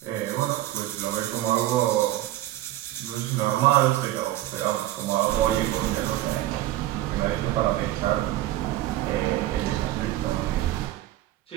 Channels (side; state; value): left; quieter; 14.8 dB